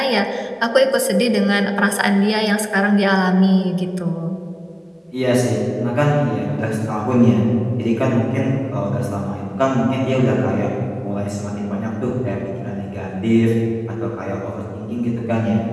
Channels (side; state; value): both; identical; correlation 1.00